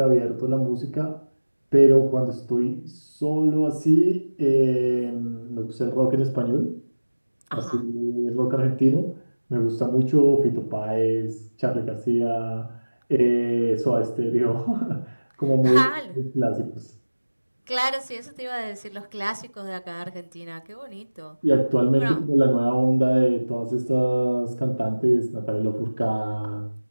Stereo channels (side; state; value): both; inverted; correlation -1.00